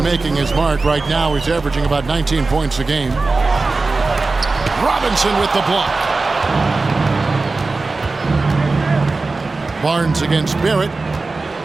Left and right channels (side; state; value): left; quieter; 3.7 dB